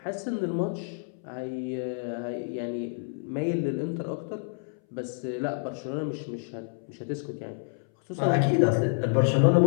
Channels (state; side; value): silent; right; 59 dB below the other